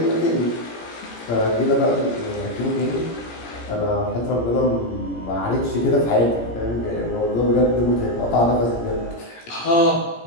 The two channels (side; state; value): right; late; 17 ms